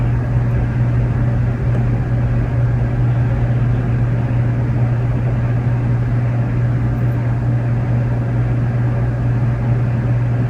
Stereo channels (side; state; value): both; identical; correlation 1.00